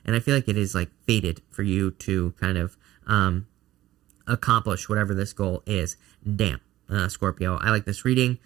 And I feel like it is like fated for you to kind of accomplish whatever this goal is. Damn. Scorpio. I like this reading.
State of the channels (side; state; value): left; quieter; 14.8 dB